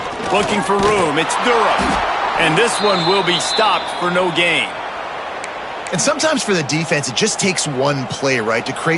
Looking for room. It's Durham. And this one will be stopped for no gain. And sometimes for the defense, it just takes one play, right, to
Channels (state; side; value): identical; both; correlation 1.00